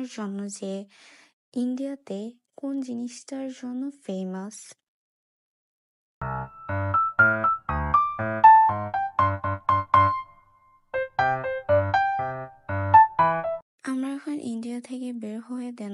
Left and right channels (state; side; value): identical; both; correlation 1.00